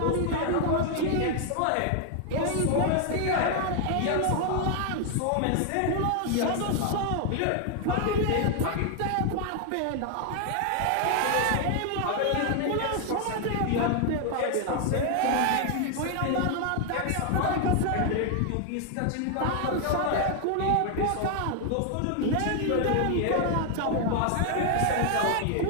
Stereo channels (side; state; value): both; different; correlation 0.00